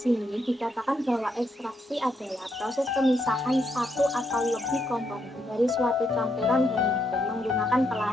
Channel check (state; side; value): normal; both; correlation 0.77